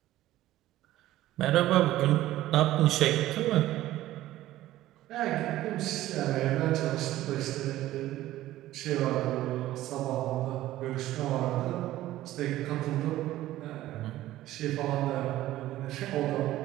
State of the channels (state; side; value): quieter; left; 15.0 dB